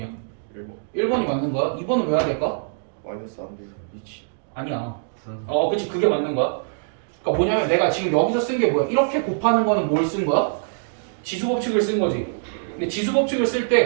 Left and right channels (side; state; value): left; silent; digital silence